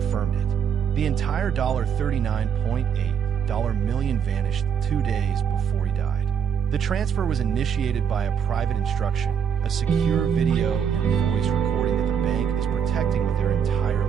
it. The entire $39.8 million vanished 2 days before he died. The transfer was initiated by a private instruction, a secure video and voice recording that the bank is protecting with their entire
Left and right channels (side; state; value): left; quieter; 7.5 dB